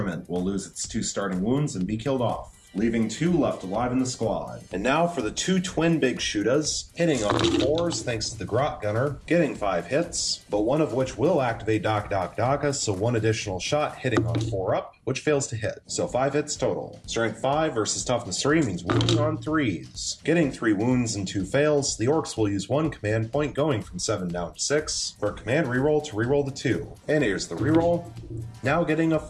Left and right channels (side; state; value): both; identical; correlation 1.00